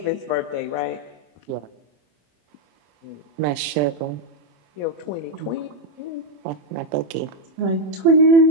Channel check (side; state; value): left; late; 27 ms